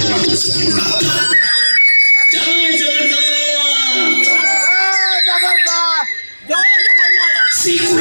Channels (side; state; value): both; inverted; correlation -1.00